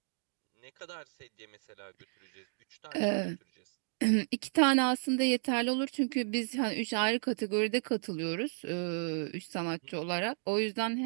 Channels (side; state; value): left; silent; digital silence